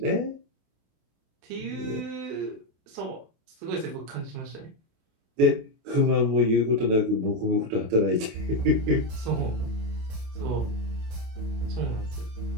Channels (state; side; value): late; left; 28 ms